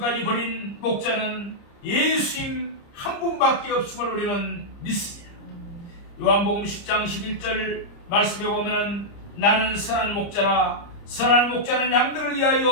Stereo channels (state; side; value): late; right; 30 ms